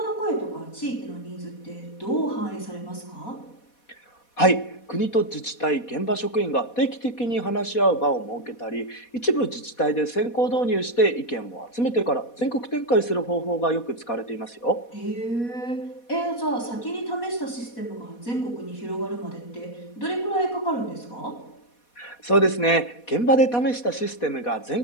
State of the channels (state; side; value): late; right; 4.2 ms